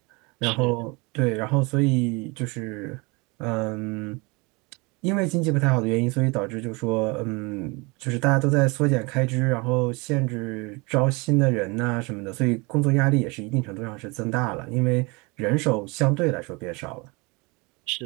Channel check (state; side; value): quieter; left; 27.4 dB